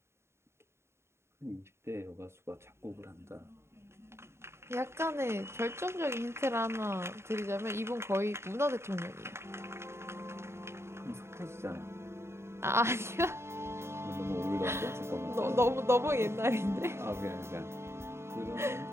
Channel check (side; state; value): left; late; 0.13 ms